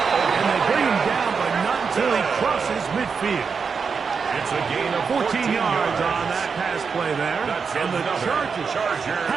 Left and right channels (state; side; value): quieter; left; 5.6 dB